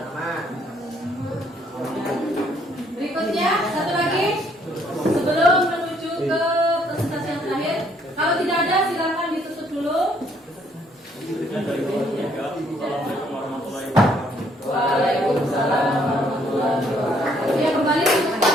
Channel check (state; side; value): normal; both; correlation 0.66